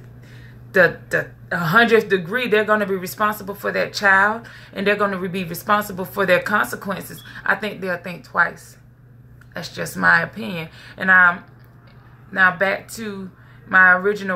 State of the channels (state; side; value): identical; both; correlation 1.00